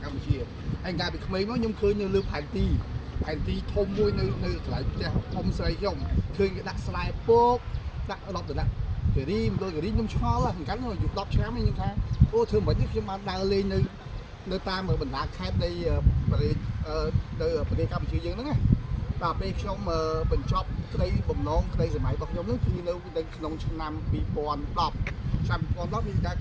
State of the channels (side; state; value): both; identical; correlation 1.00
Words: កម្ពុជាហើយកាលពីក្មេងមកខ្ញុំឃើញនៅលើផែនទីធំមួយនៅកន្លែងផ្ទះអ៊ំស្រីខ្ញុំឃើញគេដាក់ស្លែពកដាក់10ដុល្លារការីមដូចការីខ្ញុំឆ្ងល់ហ្នឹងកាលនោះអាយុ10ឆ្នាំខ្ញុំថាអូធ្វើមិននេះខ្ញុំបានដើរលេងនៅតាមបណ្ដាខេត្តនៃប្រទេសកម្ពុជាយើងហ្នឹងណាបាទពេលខ្ញុំបញ្ចប់ក្តីបំណងក្តីសម័យរបស់ខ្ញុំហ្នឹងគឺនៅក្នុងឆ្នាំ2010ឆ្នាំ2010មានតែ